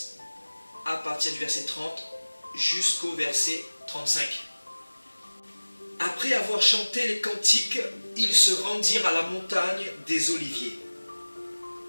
à partir du verset 30 jusqu'au verset 35. Après avoir chanté les cantiques, ils se rendirent à la montagne des Oliviers.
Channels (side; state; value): both; inverted; correlation -1.00